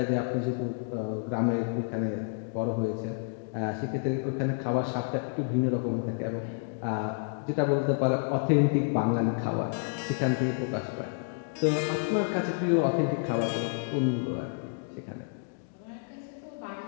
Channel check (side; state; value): right; silent; digital silence